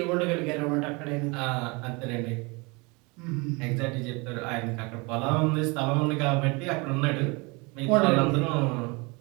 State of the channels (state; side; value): quieter; left; 28.0 dB